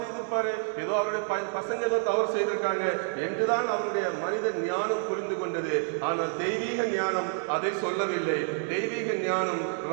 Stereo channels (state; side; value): silent; left; digital silence